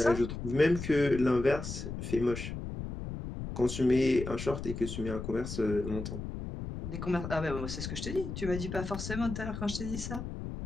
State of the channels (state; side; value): noise; left; rumble, 7 dB below the sound